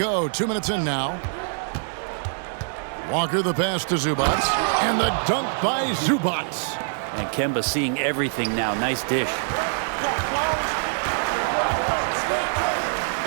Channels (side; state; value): left; silent; digital silence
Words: 2 minutes in now. Walker the pass to Zubac. And the dunk by Zubac. And Kemba seeing everything now. Nice dish.